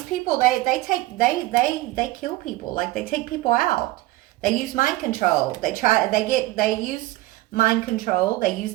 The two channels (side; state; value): left; quieter; 17.9 dB